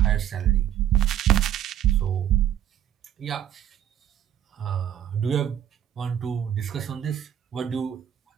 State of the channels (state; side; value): quieter; left; 10.7 dB